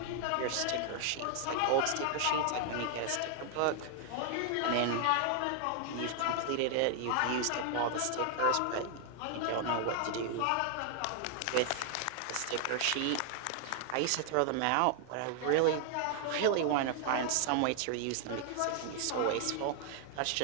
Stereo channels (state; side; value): different; both; correlation 0.00